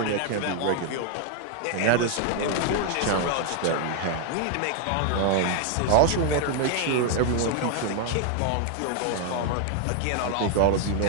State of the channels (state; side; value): different; both; correlation 0.00